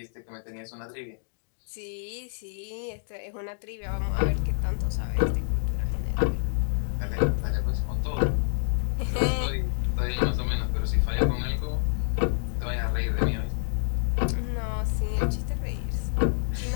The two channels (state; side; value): silent; right; digital silence